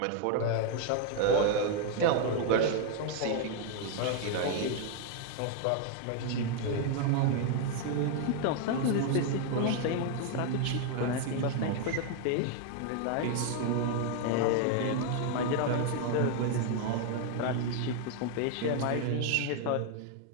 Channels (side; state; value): both; different; correlation 0.00